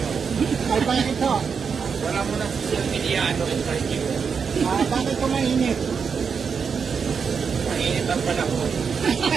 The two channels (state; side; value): quieter; left; 6.1 dB